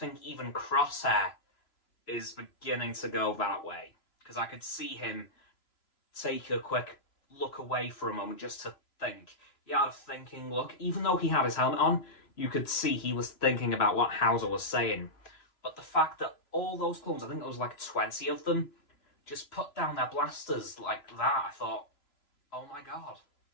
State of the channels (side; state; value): right; late; 3.0 ms